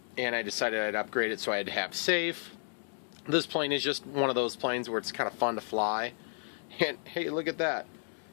and I decided I'd upgrade it so I'd have safe. This plane is just one of those planes where it's kind of fun to fly, and hey, look at that.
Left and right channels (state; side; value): silent; right; digital silence